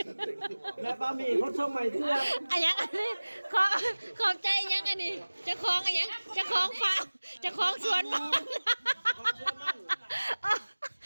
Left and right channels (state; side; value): inverted; both; correlation -1.00